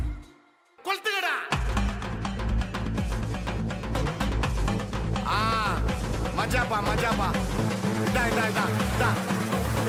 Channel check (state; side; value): identical; both; correlation 1.00